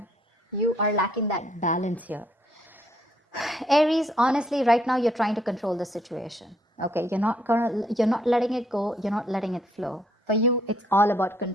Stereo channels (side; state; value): both; normal; correlation 0.68